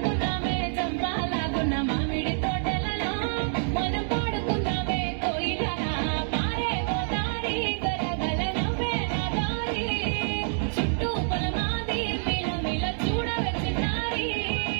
చంపాలాగున్న మామిడి తోటలలో, మనం పాడుకున్నామే కోయిలల. పారే గోదారి గలగల నవ్వే నా దారి, చుట్టూ పొలమాది మిల మిల చూడవే చిన్నారి.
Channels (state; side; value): silent; left; digital silence